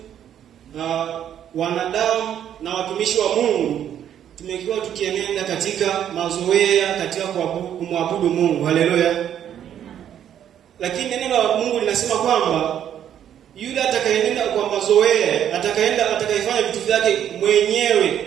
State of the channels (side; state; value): left; quieter; 10.0 dB